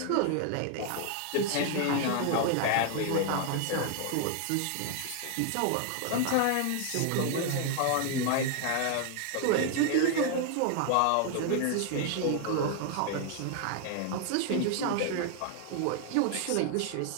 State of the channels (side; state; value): both; different; correlation 0.00